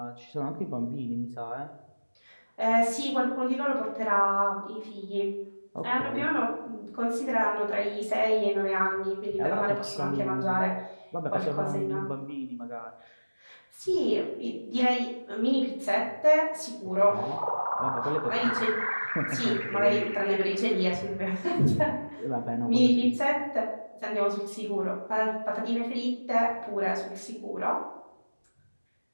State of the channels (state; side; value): inverted; both; correlation -1.00